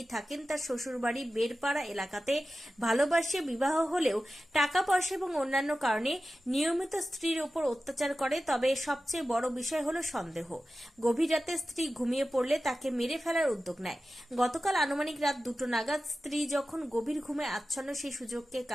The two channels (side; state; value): both; normal; correlation 0.94